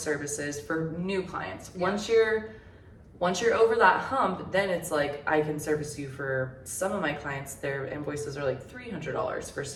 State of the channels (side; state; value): both; identical; correlation 1.00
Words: for new clients. Yeah. Once you're over that hump, then it's like I can service you for some of my clients. Their invoices are like $300 for